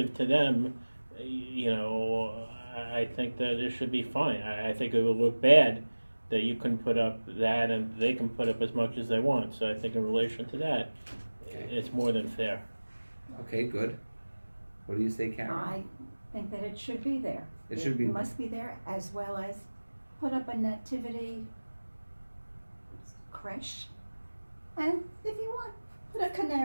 to them, I think that it should be fine. I think it would look bad that you can put up that and they can put up as much as they want. So I think in relation to that, it's more than fair. Okay, good. What do you say, Karen? I think that it should be there. It should be. Must be there, as well as put up a nativity creche, and if you want, put a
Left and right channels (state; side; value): inverted; both; correlation -1.00